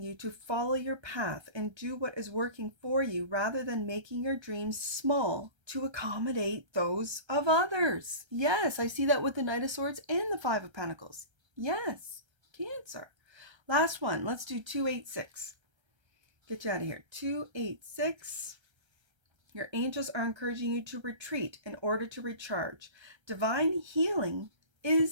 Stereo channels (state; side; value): late; left; 1.3 ms